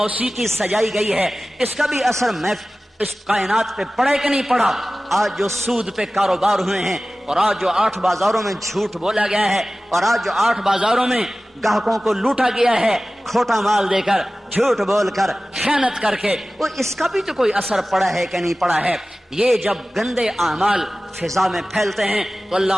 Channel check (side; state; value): both; normal; correlation 0.97